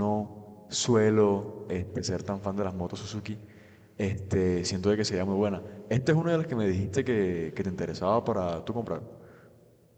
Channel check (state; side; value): identical; both; correlation 1.00